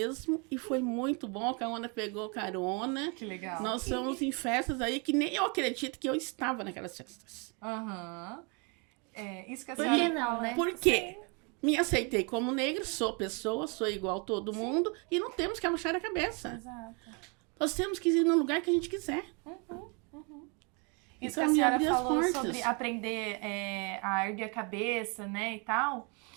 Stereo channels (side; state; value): left; quieter; 33.5 dB